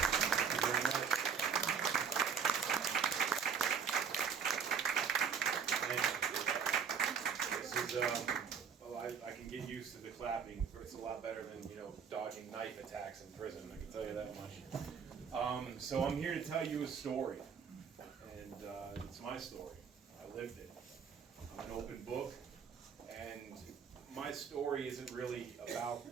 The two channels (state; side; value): quieter; left; 6.6 dB